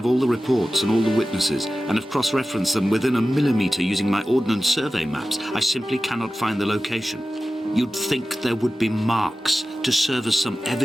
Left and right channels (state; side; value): normal; both; correlation 0.95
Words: all the reports and all the witnesses, and have cross-referenced them within a millimetre using my Ordnance Survey maps, I simply cannot find the location. You'd think there would be marks to serve as some